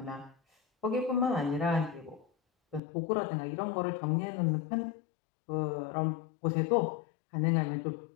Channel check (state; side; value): drops out; right; at 2.8 s